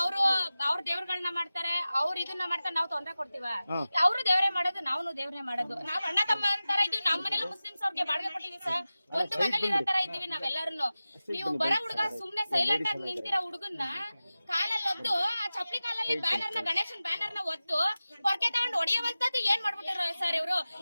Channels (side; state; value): both; inverted; correlation -0.96